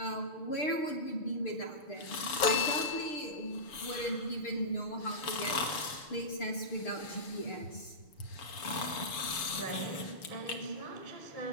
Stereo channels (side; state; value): right; late; 6.9 ms